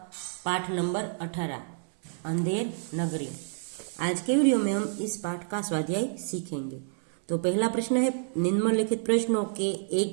पाठ नंबर 18 अंधेर नगरी। आज के वीडियो में हम इस पाठ का स्वाध्याय सीखेंगे। तो पहला प्रश्न है, निम्नलिखित प्रश्नों के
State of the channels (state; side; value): silent; left; 58 dB below the other